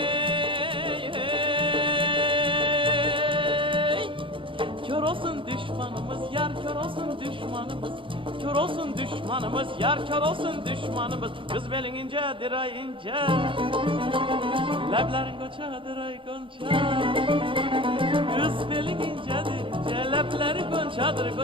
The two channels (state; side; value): late; left; 0.25 ms